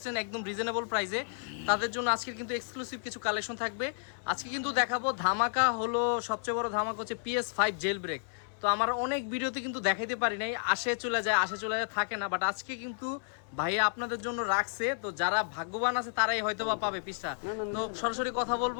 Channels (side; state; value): right; silent; 57 dB below the other